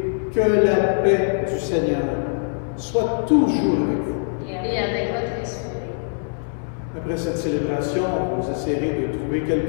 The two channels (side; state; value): right; silent; 64 dB below the other